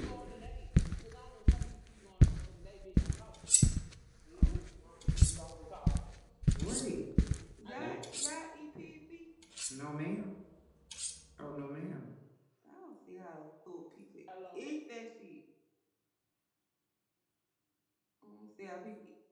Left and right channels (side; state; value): both; identical; correlation 1.00